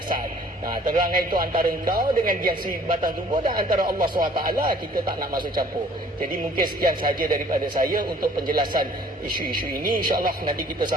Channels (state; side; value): normal; both; correlation 0.55